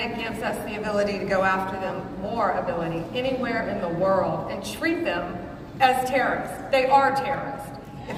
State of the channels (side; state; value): both; identical; correlation 1.00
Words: gives us the ability to go after them, more ability, anywhere in the world, and treat them as terrorists. They are terrorists.